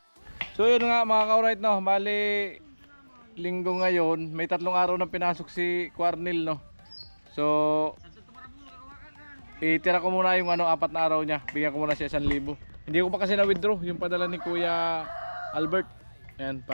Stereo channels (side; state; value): both; inverted; correlation -1.00